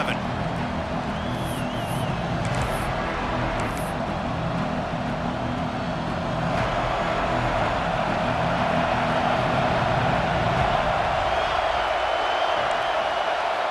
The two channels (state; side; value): identical; both; correlation 1.00